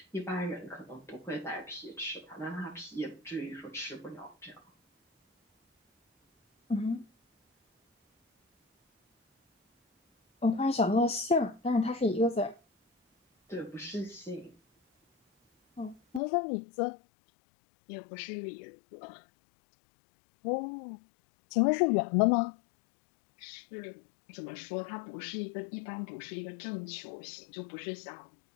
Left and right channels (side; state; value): right; drops out; at 16.2 s